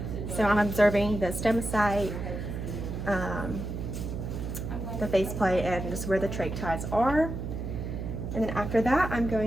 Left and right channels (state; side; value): noise; right; hum, 5 dB below the sound